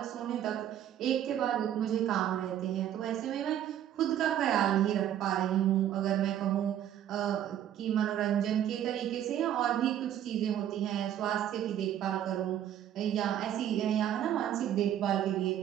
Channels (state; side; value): quieter; left; 10.8 dB